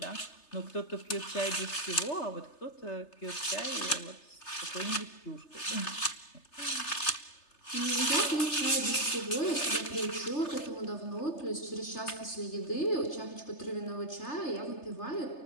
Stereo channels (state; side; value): late; right; 3.3 ms